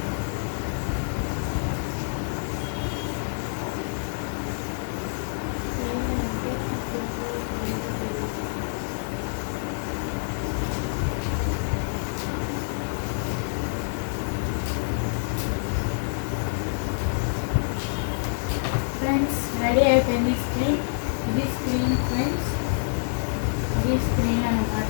ఫ్రెండ్స్ రెడీ అయిపోయింది స్క్రీన్. ఇది స్క్రీన్ ఫ్రెండ్స్, ఇది స్క్రీన్ అన్నమాట.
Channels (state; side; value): silent; right; digital silence